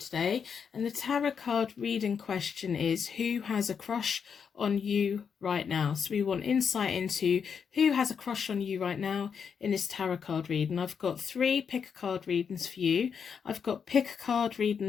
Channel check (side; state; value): right; quieter; 6.7 dB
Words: And the tarot card reading question is, who has a crush on you right now? So we want insight into who has a crush on you right now in this tarot card reading. I've got 3 pick a card readings for you. I've got pick a card reading